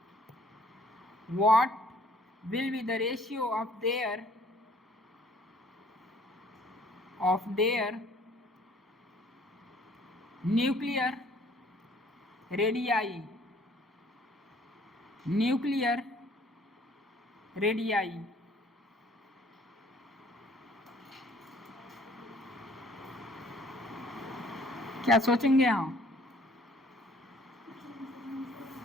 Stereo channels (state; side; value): normal; both; correlation 0.58